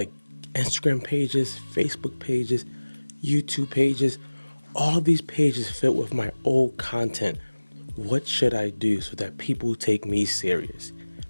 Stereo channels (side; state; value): both; inverted; correlation -1.00